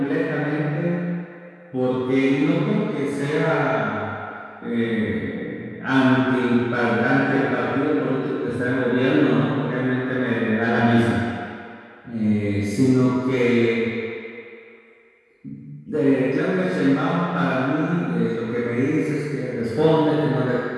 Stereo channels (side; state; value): both; identical; correlation 1.00